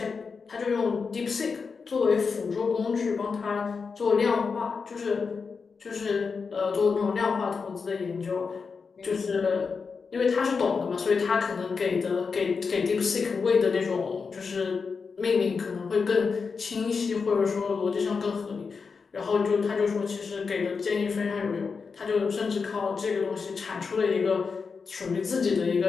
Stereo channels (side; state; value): right; quieter; 5.2 dB